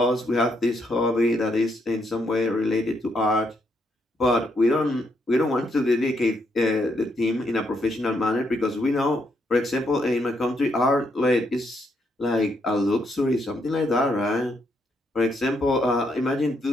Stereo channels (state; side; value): normal; both; correlation 0.76